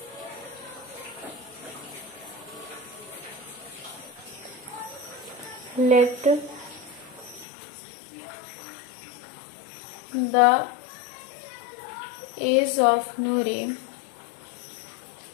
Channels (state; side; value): drops out; right; at 7.5 s